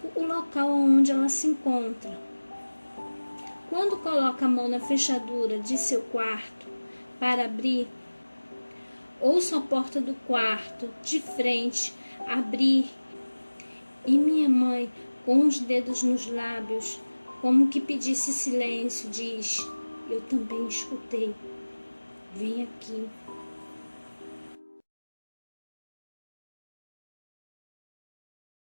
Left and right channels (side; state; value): both; inverted; correlation -1.00